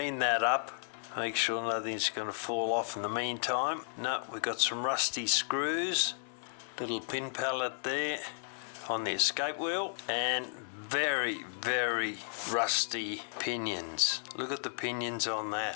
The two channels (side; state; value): right; silent; digital silence